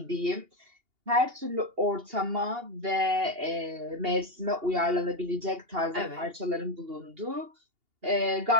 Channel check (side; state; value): left; late; 2.8 ms